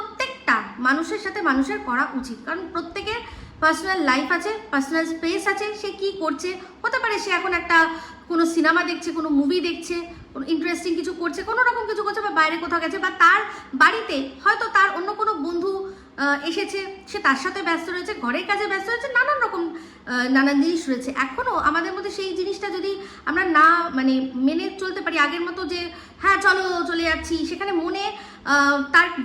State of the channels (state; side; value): identical; both; correlation 1.00